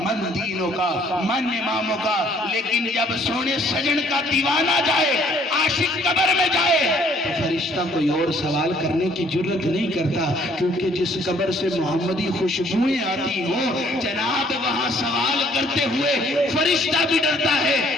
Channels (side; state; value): both; normal; correlation 0.61